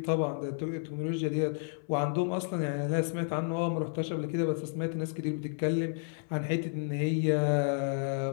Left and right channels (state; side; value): silent; right; 57 dB below the other